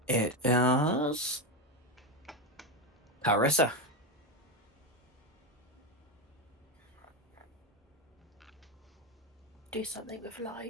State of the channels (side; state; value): both; normal; correlation 0.13